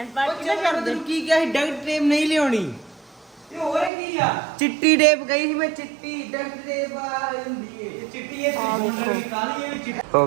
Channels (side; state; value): left; drops out; at 3.9 s